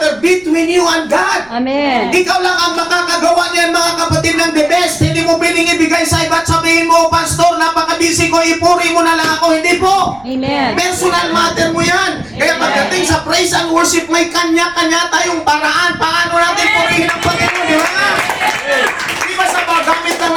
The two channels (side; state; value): right; noise; rumble, 28 dB below the sound